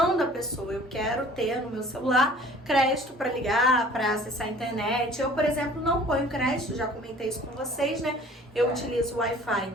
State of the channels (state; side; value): normal; both; correlation 0.49